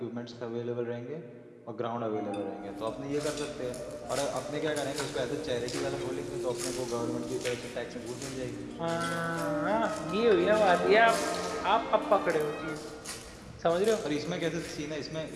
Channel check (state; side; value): identical; both; correlation 1.00